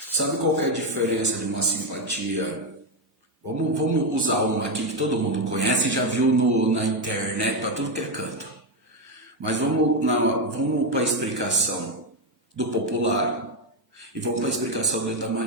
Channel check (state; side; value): normal; both; correlation 0.07